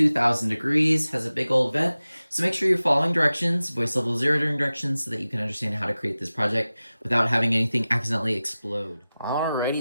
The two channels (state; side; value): inverted; both; correlation -0.96